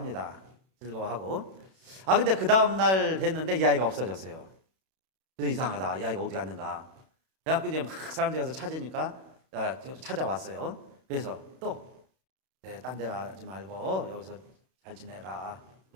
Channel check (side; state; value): left; late; 31 ms